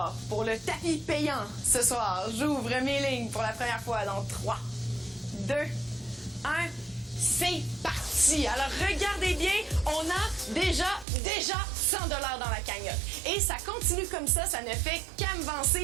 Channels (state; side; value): drops out; left; at 11.1 s